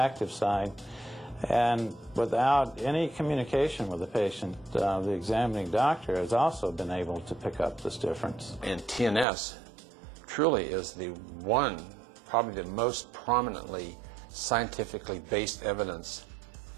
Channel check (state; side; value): drops out; left; at 9.2 s